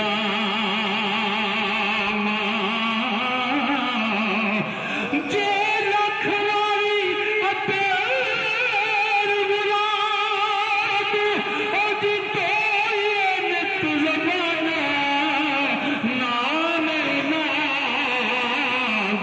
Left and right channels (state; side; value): identical; both; correlation 1.00